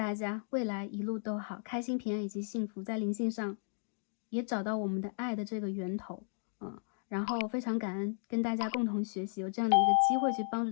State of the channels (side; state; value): right; silent; digital silence